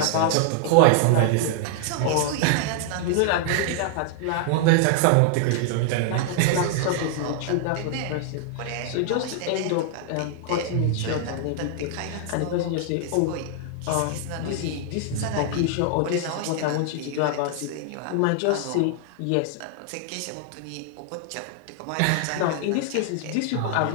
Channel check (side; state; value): both; different; correlation 0.00